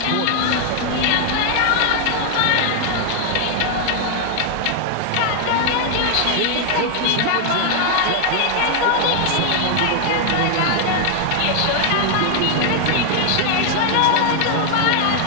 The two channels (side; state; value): both; different; correlation 0.00